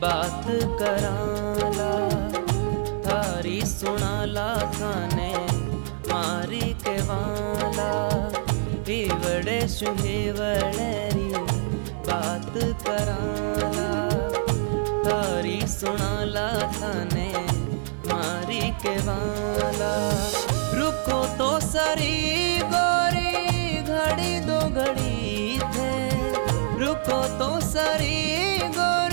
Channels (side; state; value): left; silent; digital silence